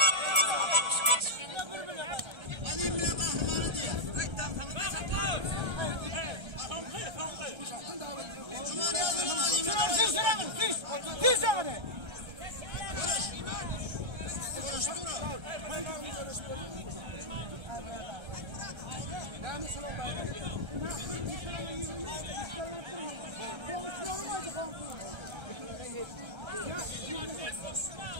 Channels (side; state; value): left; late; 1.3 ms